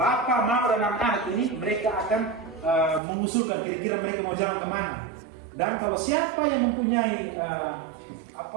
Mama, dan anak-anak ini mereka akan mengusulkan kira-kira mereka mau jalan kemana. Dan kalau siapa yang mempunyai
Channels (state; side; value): drops out; left; at 3.0 s